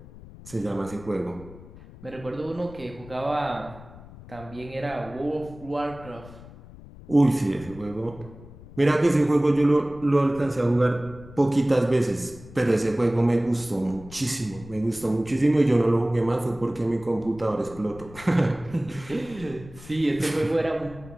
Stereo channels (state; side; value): noise; left; rumble, 18 dB below the sound